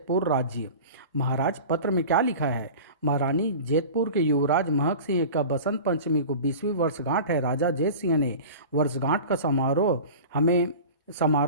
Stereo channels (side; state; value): both; inverted; correlation -0.36